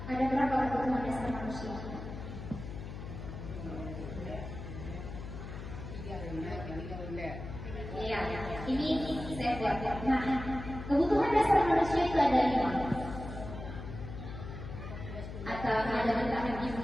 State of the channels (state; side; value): noise; left; hum, 9 dB below the sound